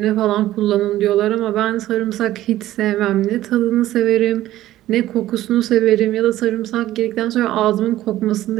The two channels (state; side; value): quieter; left; 14.5 dB